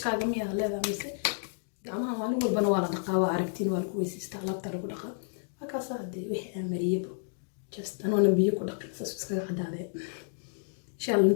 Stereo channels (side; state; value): right; silent; digital silence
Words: جميع هذا مثل جماعة وانو والبنوارة دقاوة عرفتين والكويس استعلاب ترى بدقة هكذا صادق وحي مريبو just أنا نبيه كل دقيقة سبسكرايب عدادة إن شاء الله